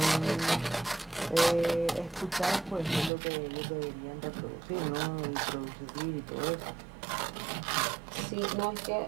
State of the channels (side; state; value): left; drops out; at 3.1 s